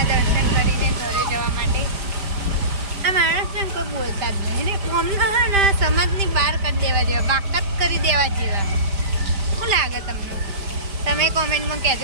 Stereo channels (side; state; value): left; late; 5.0 ms